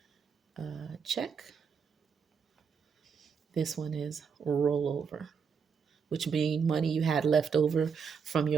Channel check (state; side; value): quieter; left; 6.3 dB